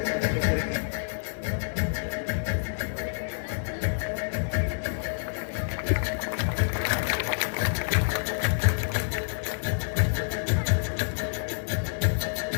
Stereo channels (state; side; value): silent; right; digital silence